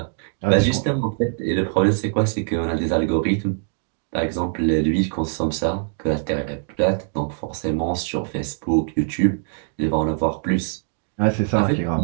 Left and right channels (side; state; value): left; silent; digital silence